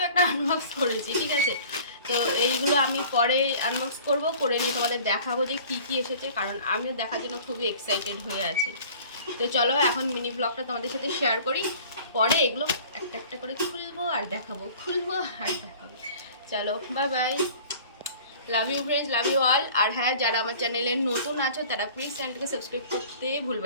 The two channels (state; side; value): inverted; both; correlation -0.46